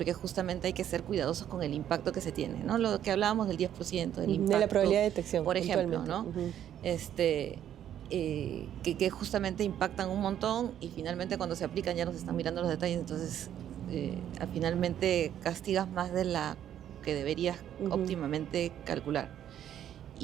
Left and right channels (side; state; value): left; quieter; 10.5 dB